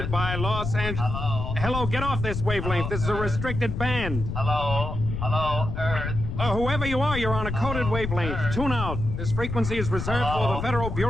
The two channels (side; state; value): left; noise; rumble, 4 dB below the sound